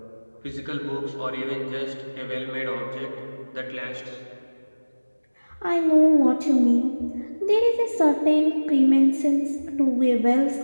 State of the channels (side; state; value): both; inverted; correlation -1.00